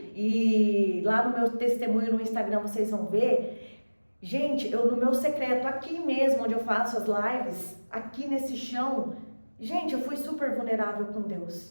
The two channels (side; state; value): both; inverted; correlation -1.00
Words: e lá no meu testemunho no Instagram vocês vão ver, gente, eu no meu secreto, aqui mesmo onde eu faço as lives, aqui nesse chão, gente, eu fui super vulnerável com